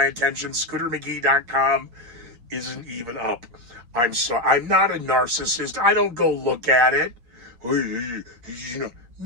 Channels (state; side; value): late; left; 8.6 ms